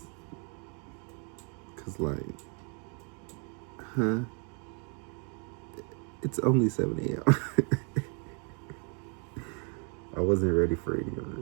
Cause it's only 7 a.m. I wasn't ready for any of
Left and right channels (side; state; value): left; quieter; 38.2 dB